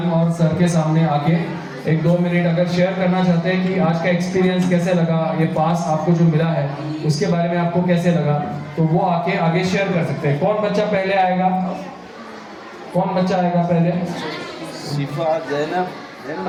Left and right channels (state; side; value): identical; both; correlation 1.00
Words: और सर के सामने आके 1-2 मिनट अगर शेयर करना चाहते हैं कि आज का एक्सपीरियंस कैसे लगा, ये पास आपको जो मिला है उसके बारे में आपको कैसे लगा, तो वो आके आगे शेयर कर सकते हैं। कौन बच्चा पहले आएगा? कौन बच्चा आएगा पहले? शिफा, ज़ैनब।